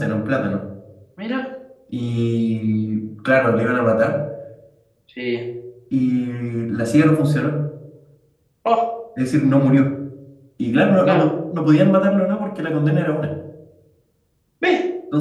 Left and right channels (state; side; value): identical; both; correlation 1.00